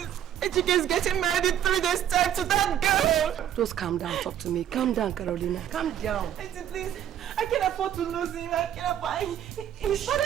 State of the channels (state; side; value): quieter; left; 10.5 dB